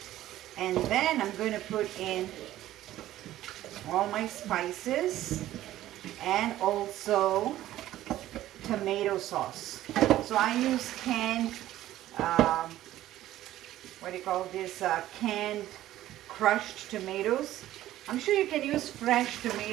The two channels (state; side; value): quieter; left; 14.0 dB